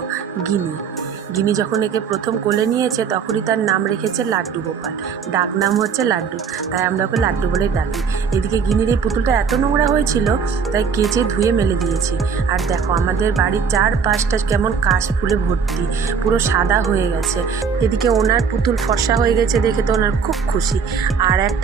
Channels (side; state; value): left; quieter; 6.2 dB